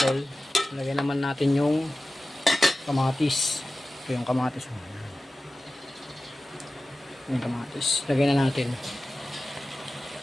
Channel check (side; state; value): both; normal; correlation 0.95